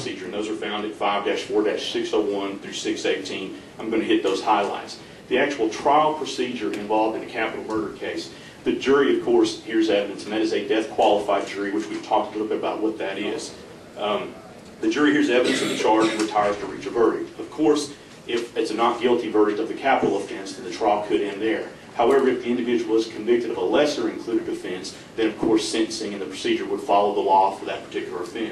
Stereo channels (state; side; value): identical; both; correlation 1.00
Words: and those are found at 5-4-601 through 618. I'm going to hit those highlights. The actual trial procedure involved in a capital murder case, the jury, of course, hears evidence, and that is a death-qualified jury, which we've talked a little bit about what that is. The jury hears evidence of the charge and retires to reach a verdict. Of course, if it's a not guilty verdict of the capital offense, then the trial could end there. However, if the individual is convicted of a lesser included offense, then of course sentencing and the procedure would follow the law for that particular